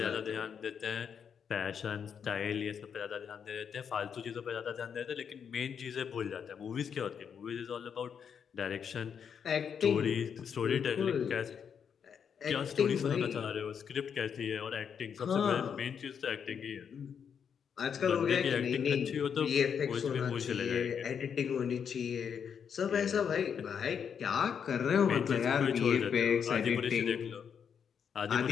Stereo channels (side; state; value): right; quieter; 7.3 dB